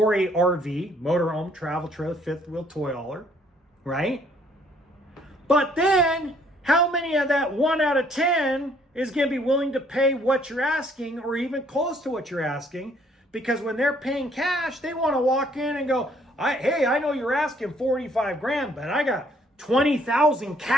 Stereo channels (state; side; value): normal; both; correlation 0.64